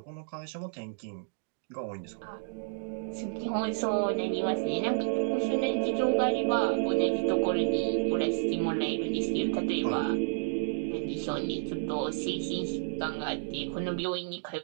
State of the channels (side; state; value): left; silent; digital silence